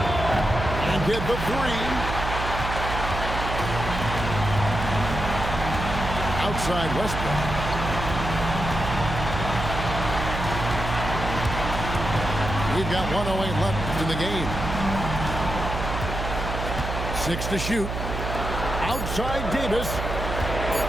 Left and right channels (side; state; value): right; noise; hum, 5 dB below the sound